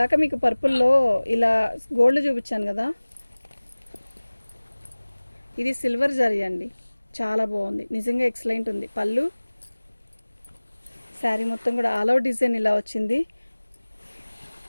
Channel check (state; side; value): inverted; both; correlation -1.00